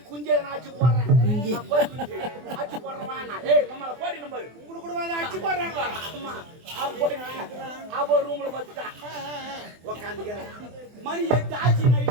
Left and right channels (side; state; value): left; late; 24 ms